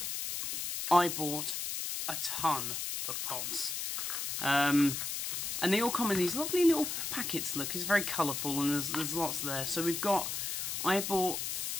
I bought a ton of pods. And they all come in these lovely little packets, look, it's very colourful and there's lots there. So I bought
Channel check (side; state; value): left; noise; hiss, 3 dB below the sound